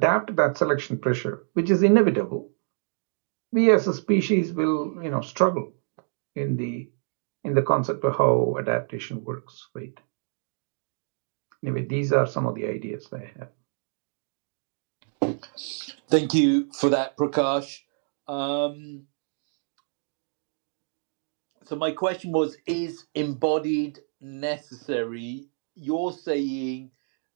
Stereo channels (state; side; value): silent; left; digital silence